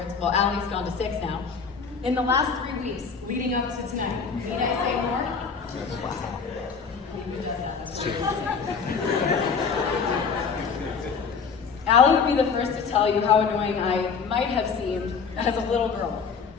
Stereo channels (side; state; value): right; quieter; 5.7 dB